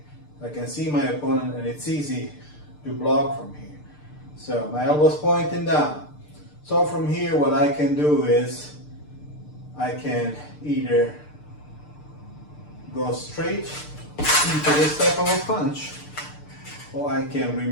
I can see my opponent and it's easy to block from here. So my elbow's pointing down. So from here, what I can do is I can either go straight into this type of a punch, or I can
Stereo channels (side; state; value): right; late; 6.7 ms